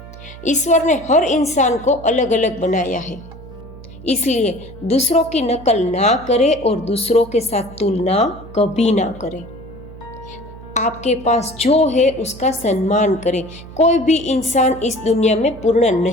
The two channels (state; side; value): noise; right; hum, 17 dB below the sound